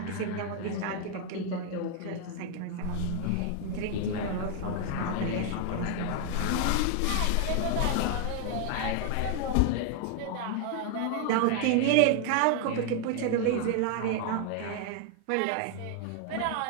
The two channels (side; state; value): both; different; correlation 0.00